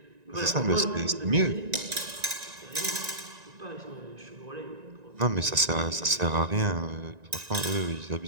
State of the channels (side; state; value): left; late; 1.9 ms